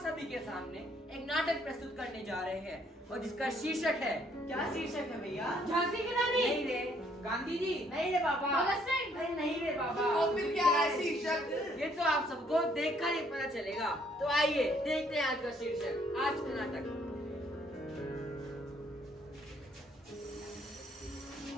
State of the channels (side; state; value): both; normal; correlation 0.66